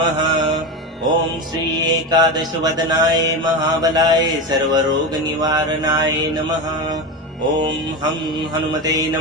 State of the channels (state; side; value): normal; both; correlation 0.19